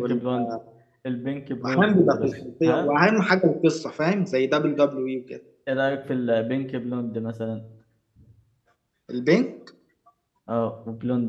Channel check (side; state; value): both; identical; correlation 1.00